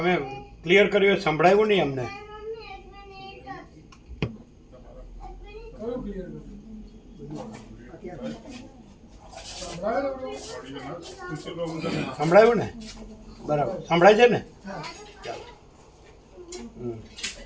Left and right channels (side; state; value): both; identical; correlation 1.00